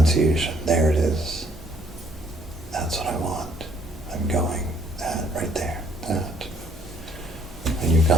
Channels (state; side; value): normal; both; correlation 0.64